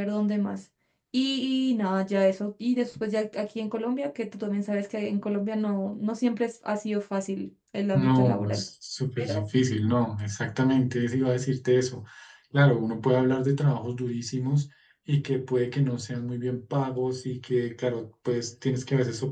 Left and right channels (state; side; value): identical; both; correlation 1.00